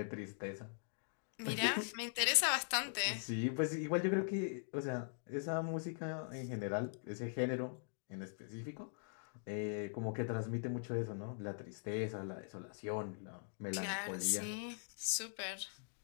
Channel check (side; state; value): right; silent; digital silence